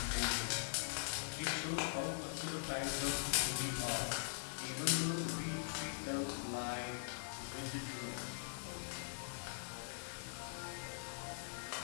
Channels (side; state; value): right; silent; digital silence